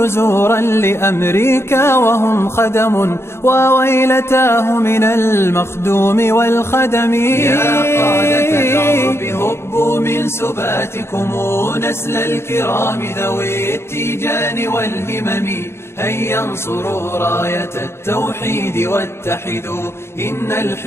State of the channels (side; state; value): right; late; 0.12 ms